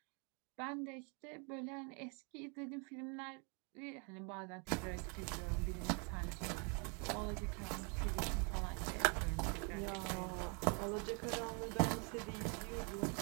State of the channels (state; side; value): quieter; left; 36.0 dB